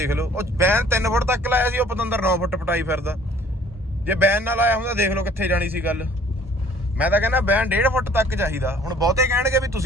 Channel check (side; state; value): both; normal; correlation 0.55